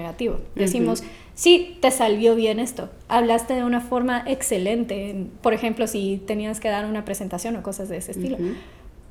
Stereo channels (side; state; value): both; identical; correlation 1.00